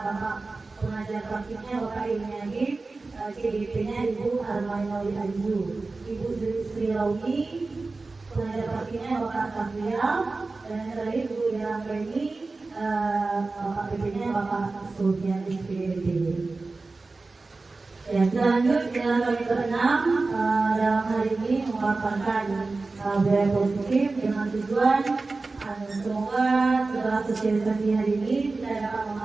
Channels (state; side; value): quieter; left; 3.6 dB